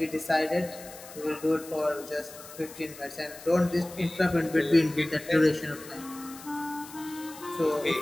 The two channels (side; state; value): left; noise; hiss, 16 dB below the sound